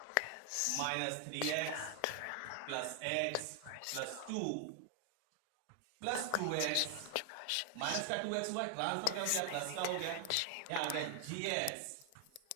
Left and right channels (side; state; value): both; different; correlation 0.00